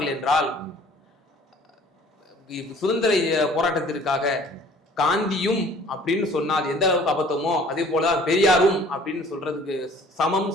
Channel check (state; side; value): normal; both; correlation 0.52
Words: என்றால் சுதந்திர போராட்டத்திற்காக காந்தியும் அப்படின்னு சொன்னா அது எந்த அளவுக்கு அபத்தமோ அதே போல பெரியாரும் அப்படின்னு சொல்றதுக்கு சமம்